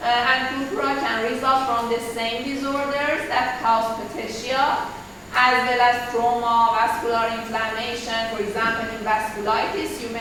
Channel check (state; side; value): identical; both; correlation 1.00